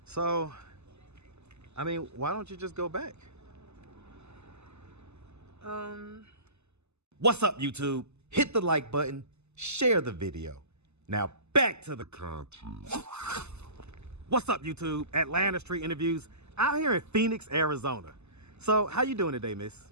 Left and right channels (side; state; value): left; late; 0.81 ms